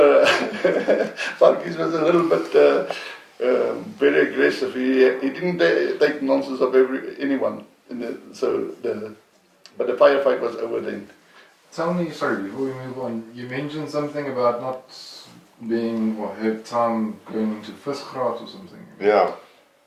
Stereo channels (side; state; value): both; identical; correlation 1.00